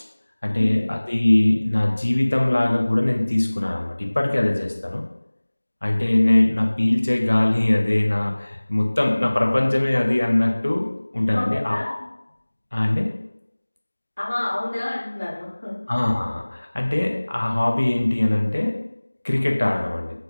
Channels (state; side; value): inverted; both; correlation -1.00